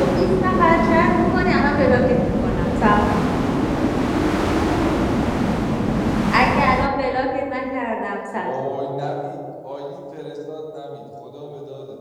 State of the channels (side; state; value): both; identical; correlation 1.00